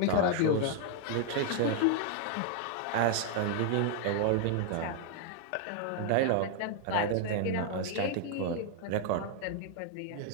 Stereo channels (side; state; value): both; different; correlation 0.00